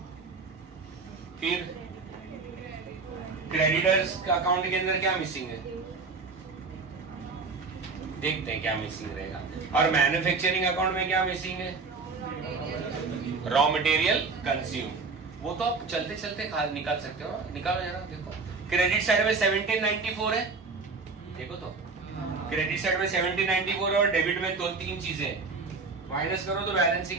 फिर क्रेडिटर्स का अकाउंट के अंदर क्या मिसिंग है, देखते हैं क्या मिसिंग रहेगा. और मैन्युफैक्चरिंग अकाउंट में क्या मिसिंग है, रॉ मटेरियल कंज्यूम. वो तो आप चलते चलते निकाल सकते हो. निकालो जरा. देखो क्रेडिट साइड में 1794 है. देखो तो क्रेडिट साइड में 1794 और डेबिट में दो तीन चीजें. माइनस करो तो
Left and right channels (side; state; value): left; quieter; 4.3 dB